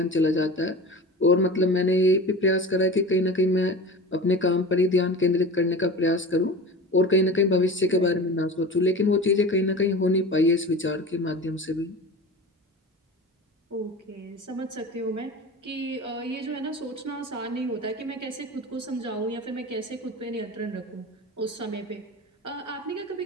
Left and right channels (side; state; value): both; normal; correlation 0.33